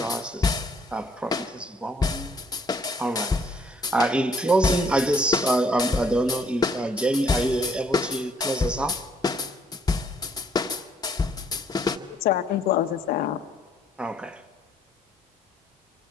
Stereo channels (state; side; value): normal; both; correlation 0.65